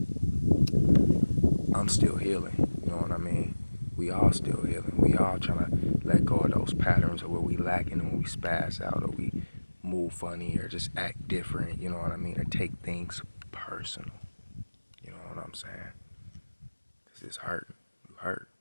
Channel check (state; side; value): inverted; both; correlation -1.00